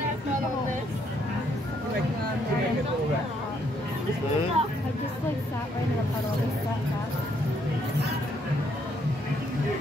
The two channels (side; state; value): both; normal; correlation 0.71